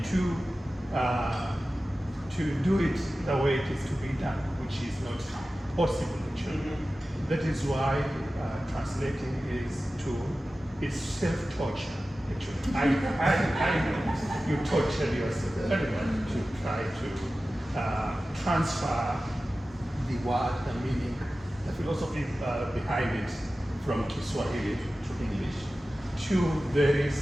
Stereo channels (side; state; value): both; normal; correlation 0.95